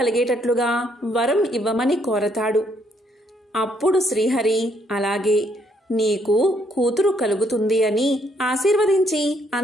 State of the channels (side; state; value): both; normal; correlation 0.70